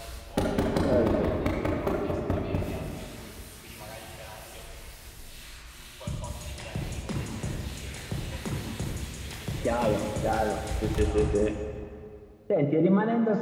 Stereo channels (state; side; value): identical; both; correlation 1.00